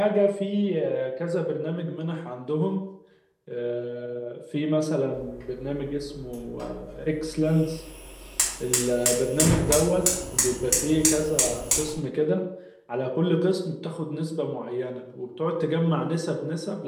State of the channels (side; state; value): both; identical; correlation 1.00